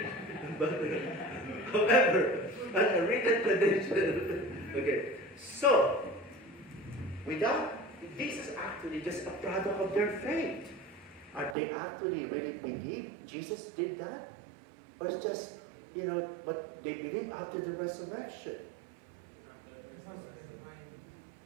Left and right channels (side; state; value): left; drops out; at 11.6 s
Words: However, a written tradition. Okay. So, this is actually just a product of their faith. Are they actually really believe Jesus did that? Or it's just, what they believe after the resurrection?